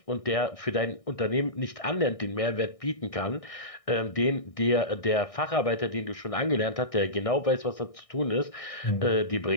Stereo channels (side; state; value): right; late; 1.6 ms